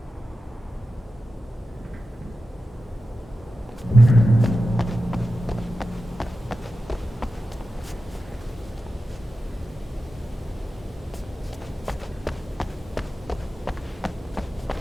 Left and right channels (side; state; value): both; normal; correlation 0.92